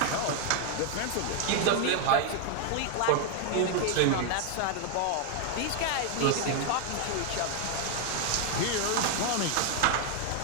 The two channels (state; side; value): different; both; correlation 0.00